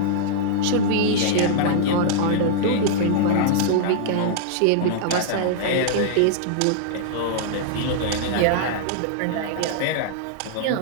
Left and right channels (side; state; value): both; different; correlation -0.01